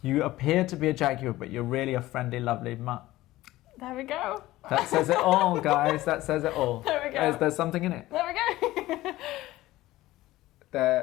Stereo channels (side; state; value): right; quieter; 16.8 dB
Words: appear to be a jaguar, but you're really a friendly, lovely mutt. There we go. That says it all, guys. That says it all. There we go. There's something in it. There we go.